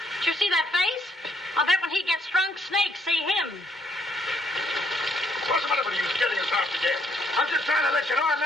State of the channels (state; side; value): normal; both; correlation 0.70